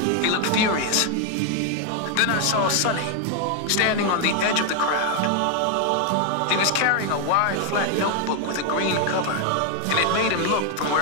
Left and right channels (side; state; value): both; different; correlation 0.01